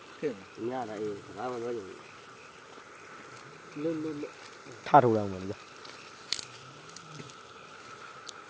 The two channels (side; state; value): both; identical; correlation 1.00